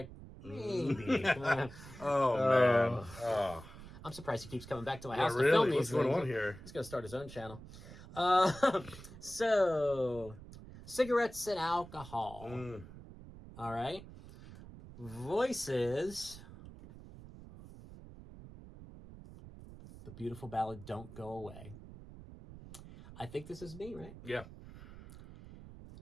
maybe. Man. I'm surprised he keeps coming back to my Yeah, house to really? film these What's going things. on here? He's going to start his own channel. So, cigarettes and alcohol. All right. Voices. The beautiful ballad, Don't Go Away. I think this is me, right? Yeah.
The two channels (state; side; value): noise; right; rumble, 16 dB below the sound